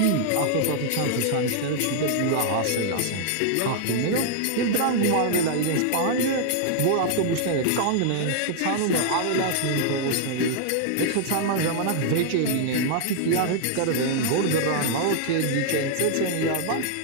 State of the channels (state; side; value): different; both; correlation -0.01